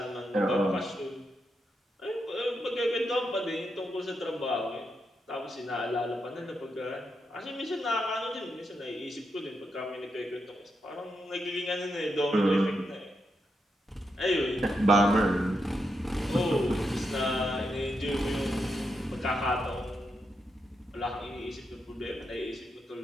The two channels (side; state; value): both; normal; correlation 0.83